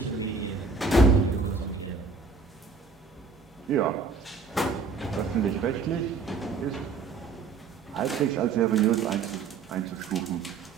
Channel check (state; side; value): quieter; left; 4.8 dB